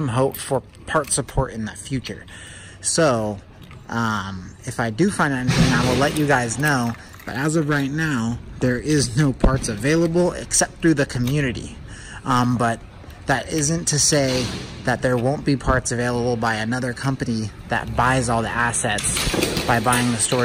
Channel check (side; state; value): both; identical; correlation 1.00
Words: hope for part support in the future. So, if I do find anything, I will let you guys know. But as of right now, there is no parts available except through the community. But that isn't to say that there won't be parts available by another company that buys all the assets by buying the